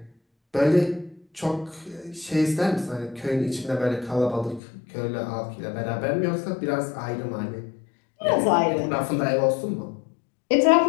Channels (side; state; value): right; drops out; at 4.6 s